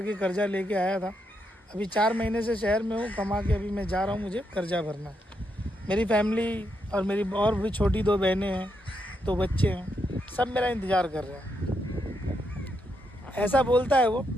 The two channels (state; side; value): normal; both; correlation 0.80